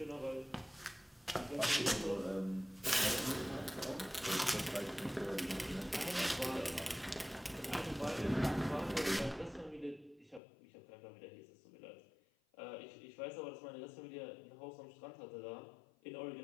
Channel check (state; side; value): drops out; right; at 10.4 s